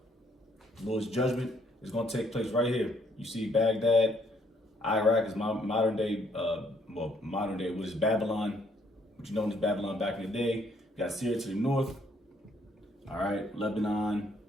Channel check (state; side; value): normal; both; correlation 0.67